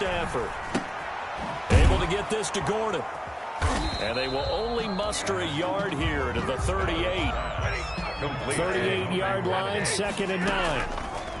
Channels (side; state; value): both; identical; correlation 1.00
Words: Able to get this to Gordon. And they will only muster a yard here to the 38. 38-yard line, 2nd and 9.